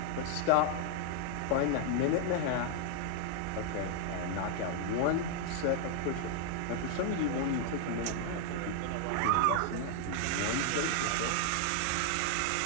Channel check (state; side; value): different; both; correlation 0.00